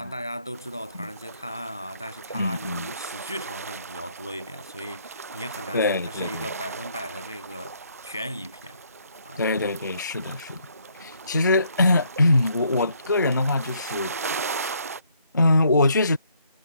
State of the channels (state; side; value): inverted; both; correlation -0.69